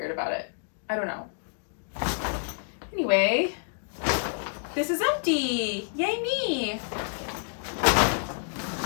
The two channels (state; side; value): silent; right; digital silence